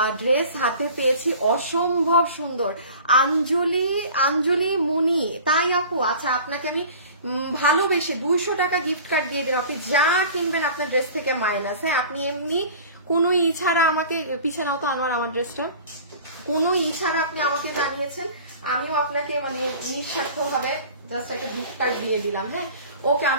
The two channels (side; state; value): both; inverted; correlation -0.42